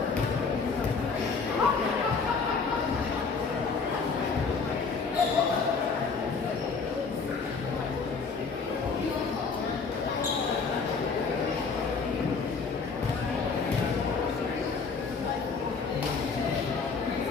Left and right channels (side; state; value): right; quieter; 4.9 dB